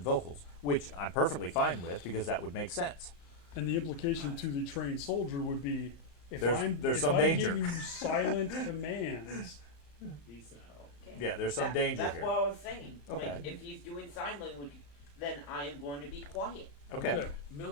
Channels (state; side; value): late; right; 34 ms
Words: vocals, which I'm perfectly fine with because that would make sense. And the implication to the trained soldier would be if There's if some I'm danger. giving you silent commands, Decent. Okay. Yeah, there's some danger That's here. what I was saying. Okay. Like, if he's doing sign language, then I am going to be quiet. Okay.